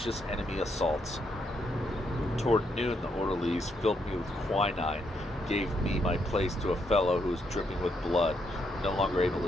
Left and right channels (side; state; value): both; normal; correlation 0.77